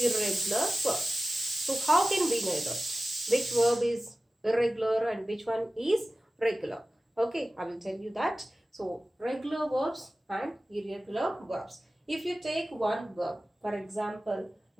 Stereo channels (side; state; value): both; normal; correlation 0.96